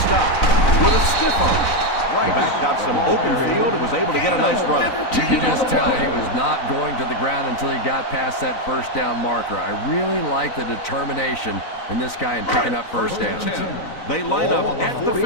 with a stiff arm. The back got some open field and was able to get a nice run. You can just tell he was not going to the ground until he got past that first down marker. I really like the determination in this guy in picking up first downs. They line up at the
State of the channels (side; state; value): right; late; 3.9 ms